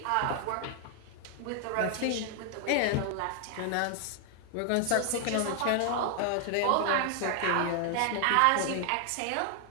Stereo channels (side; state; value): both; different; correlation 0.00